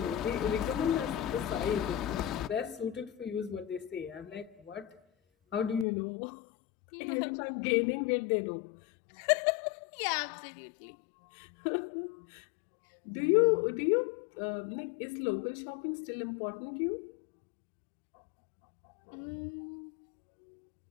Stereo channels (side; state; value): right; drops out; at 5.9 s